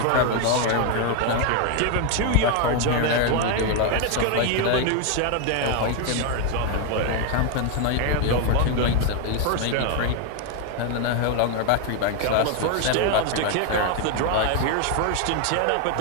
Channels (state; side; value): different; both; correlation 0.01